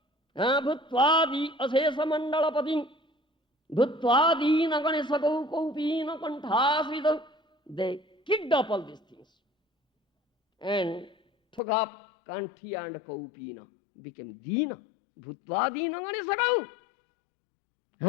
bhutvadi asesa mandalapatim, bhutvadi naganesakau kaupina kanthasvidau. They kicked up all these things and took up kanthi and kaupina, became dina, bhutvadi naganesakau.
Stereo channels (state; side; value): drops out; right; at 11.6 s